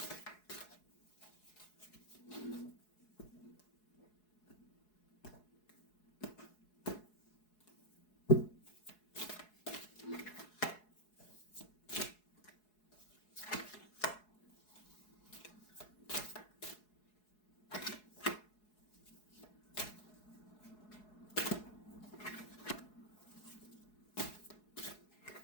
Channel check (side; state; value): right; late; 4.7 ms